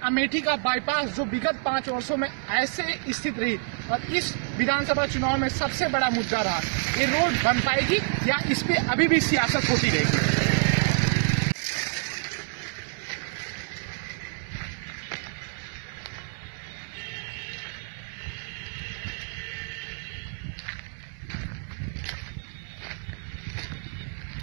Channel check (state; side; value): silent; left; 60 dB below the other